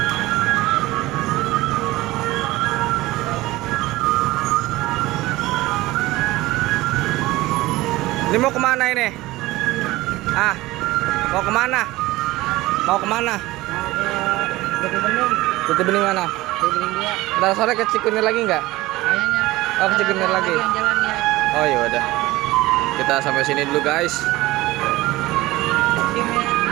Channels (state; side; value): quieter; left; 18.8 dB